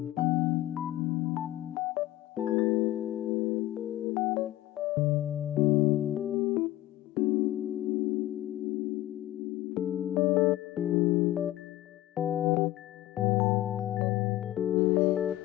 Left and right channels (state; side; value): quieter; right; 15.7 dB